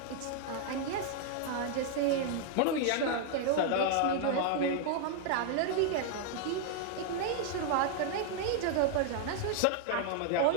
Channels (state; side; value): different; both; correlation 0.00